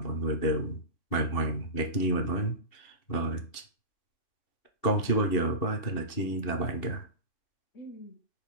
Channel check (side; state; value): right; late; 2.7 ms